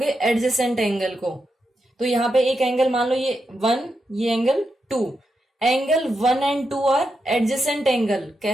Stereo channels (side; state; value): both; normal; correlation 0.85